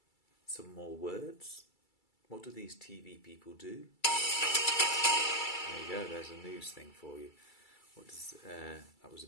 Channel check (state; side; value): late; right; 2.3 ms